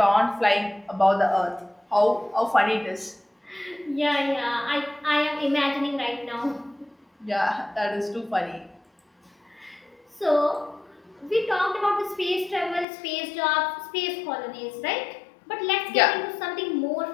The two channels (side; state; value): right; drops out; at 12.9 s